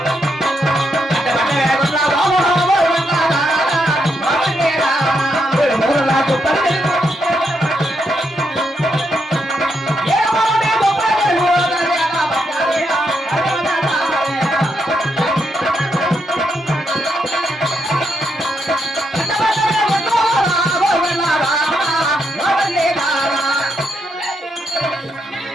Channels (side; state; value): both; normal; correlation 0.80